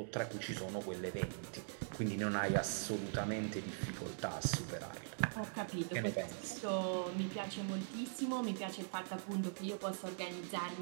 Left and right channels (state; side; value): silent; left; digital silence